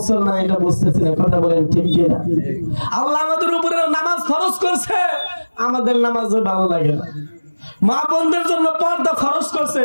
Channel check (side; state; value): both; inverted; correlation -1.00